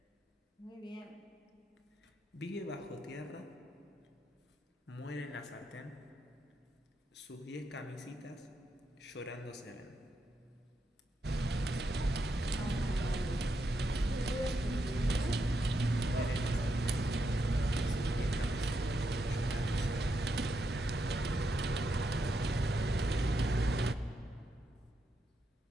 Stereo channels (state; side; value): normal; both; correlation 0.82